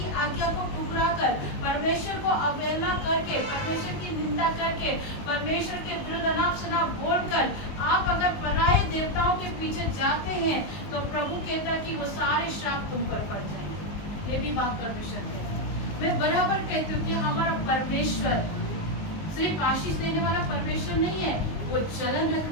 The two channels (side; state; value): right; late; 19 ms